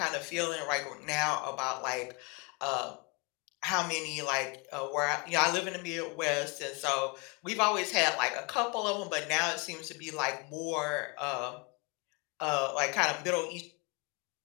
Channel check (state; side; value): quieter; right; 30.8 dB